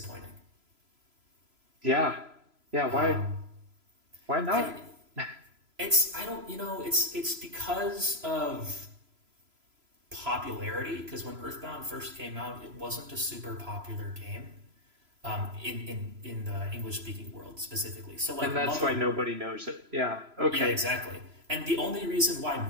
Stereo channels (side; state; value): left; late; 3.0 ms